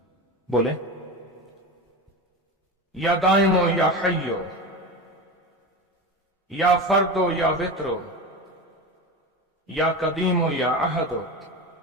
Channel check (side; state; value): both; normal; correlation 0.25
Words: बोले या दाइमो या हय्यो, या फर्दो या वित्रो, या कदीमो या अहदो,